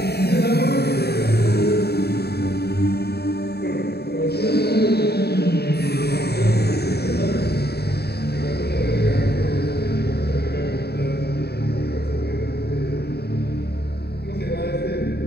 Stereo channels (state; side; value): late; right; 0.47 ms